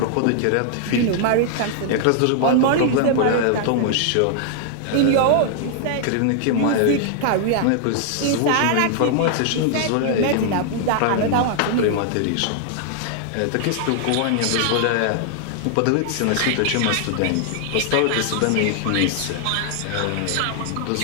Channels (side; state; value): both; different; correlation 0.00